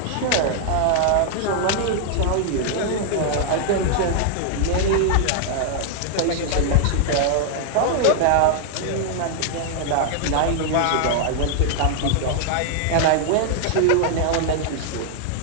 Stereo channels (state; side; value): different; both; correlation 0.00